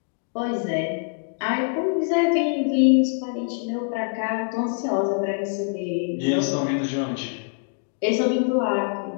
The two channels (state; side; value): silent; right; digital silence